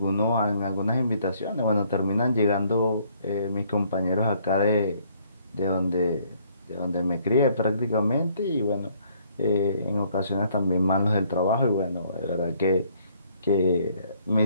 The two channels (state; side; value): inverted; both; correlation -0.65